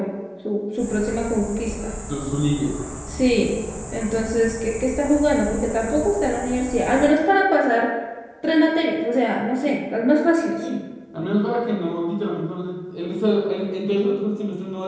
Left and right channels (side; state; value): both; identical; correlation 1.00